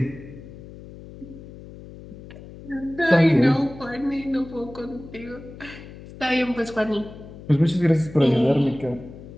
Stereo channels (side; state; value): left; noise; hum, 16 dB below the sound